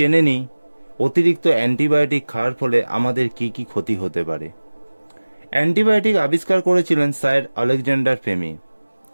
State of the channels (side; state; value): both; inverted; correlation -1.00